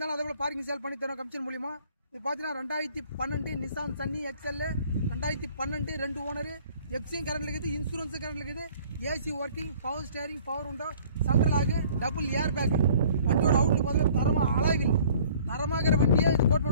அதே போல பார்க்கிங் சேல் பண்ணி தரோம் கமிஷன் மூலியமா. இது பார்த்தீங்கன்னா 2012 Nissan Sunny XL 2012 2 owner FC current இருக்குது, இன்சூரன்ஸ் கரண்ட் இருக்குது, AC working, power steering, power window, central ஆகு, டபுள் ஏர் பேக். வண்டியோட அவுட்லுக் பார்த்தீங்கன்னா தரமா அழகில் தரமாகிற வண்டியே இது கோட்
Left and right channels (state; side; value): inverted; both; correlation -0.53